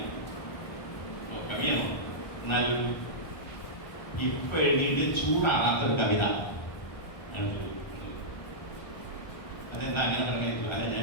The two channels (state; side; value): late; right; 1.2 ms